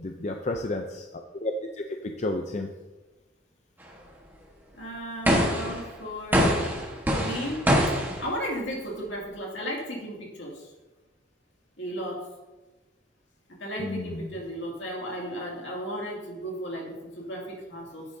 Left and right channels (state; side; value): normal; both; correlation 0.50